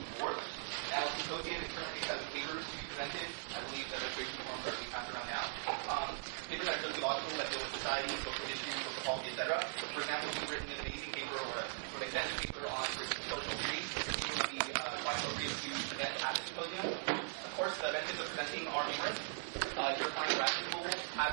4th. Now, the symposium is currently has papers to be presented. I believe the registration forms are being passed around now. Papers that are sociological, that deal with society, social issues, social policy, etc. For example, if you've written an amazing paper or a sort of extensive paper on social theory, it would be quite appropriate to present at the symposium. Of course, the benefits of presenting are numerous. Your kind of graduate school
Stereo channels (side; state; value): left; silent; digital silence